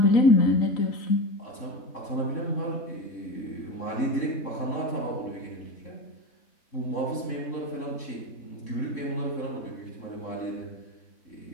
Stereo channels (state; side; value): late; right; 3.6 ms